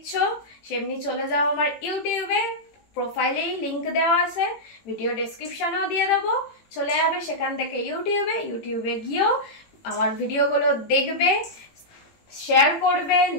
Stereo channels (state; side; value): late; right; 18 ms